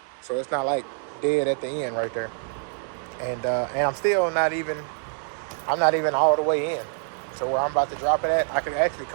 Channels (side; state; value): left; silent; digital silence